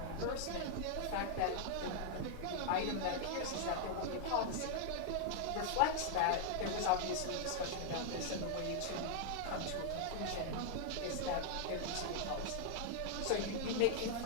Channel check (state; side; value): different; both; correlation -0.01